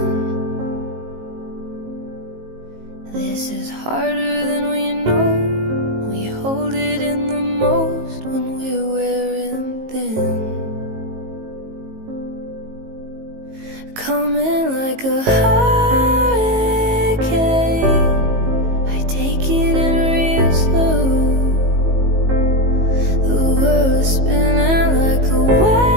This is harder than we know. We hold it in the most when we're wearing thin. Coming like a hurricane, I take it in real slow. The world is spinning like a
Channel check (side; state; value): left; late; 19 ms